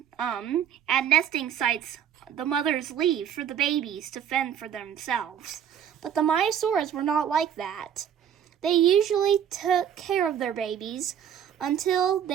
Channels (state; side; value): quieter; left; 9.1 dB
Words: at nesting sites, the mothers leave for the babies to fend for themselves. But the Maiasauras were not like that. They usually took care of their babies until